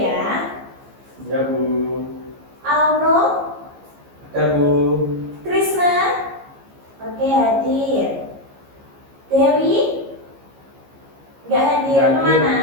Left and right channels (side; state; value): left; late; 15 ms